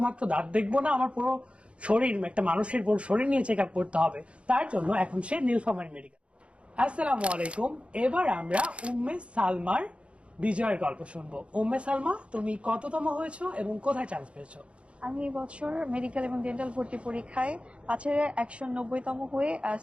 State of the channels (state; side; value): late; left; 0.060 ms